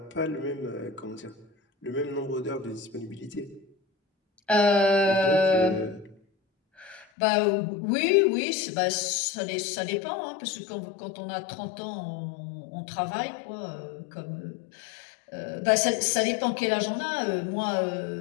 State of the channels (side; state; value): right; drops out; at 7.1 s